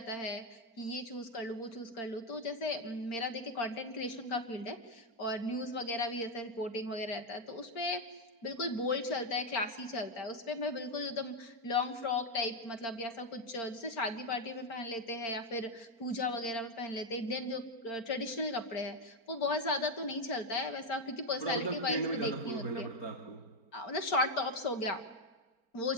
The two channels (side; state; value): right; late; 4.4 ms